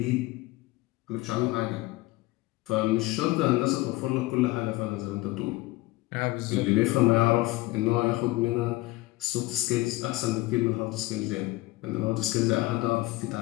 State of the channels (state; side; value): quieter; right; 20.1 dB